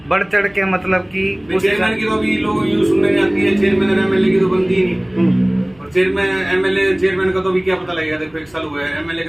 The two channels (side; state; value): left; noise; hum, 30 dB below the sound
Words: बढ़ चढ़ के, मतलब कि चेयरमैन की तो अभी लोग यूँ सुनने में आती है, चेयरमैन और एमएलए की तो बनती ही नहीं। और चेयरमैन का तो अभी क्या पता लगेगा, देखो 1 साल हुआ है, एमएलए